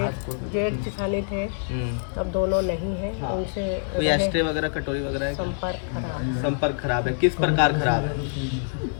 जेठानी थे, अब दोनों नहीं है। हाँ। उनसे कोई एस्ट्रे वगैरह, कटोरी वगैरह है क्या? संपर्क खराब है। किस प्रकार खराब है?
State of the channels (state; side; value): silent; right; digital silence